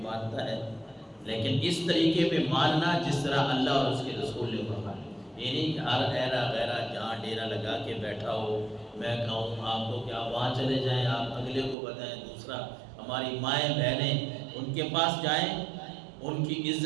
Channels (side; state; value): left; drops out; at 11.8 s